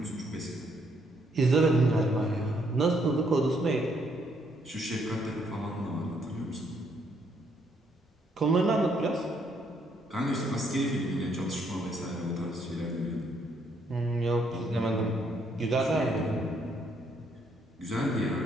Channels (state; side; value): normal; both; correlation 0.71